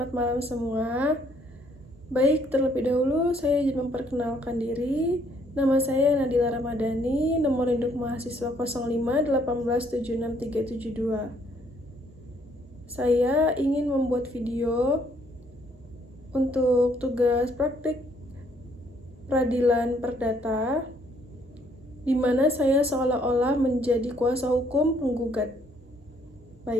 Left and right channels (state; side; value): normal; both; correlation 0.66